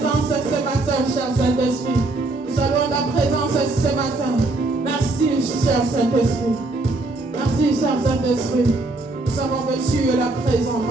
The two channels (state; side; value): quieter; left; 3.1 dB